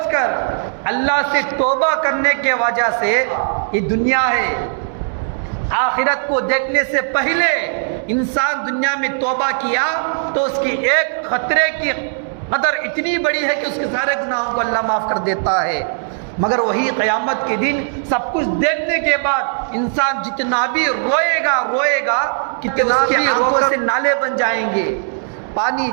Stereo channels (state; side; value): silent; left; 64 dB below the other